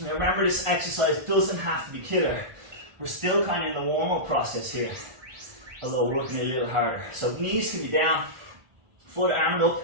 Now remember, this exercise doesn't have to be killer. We're still kind of in the warm-up process here, although working a little harder. So knees can be down, foot arm up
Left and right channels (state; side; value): late; left; 1.5 ms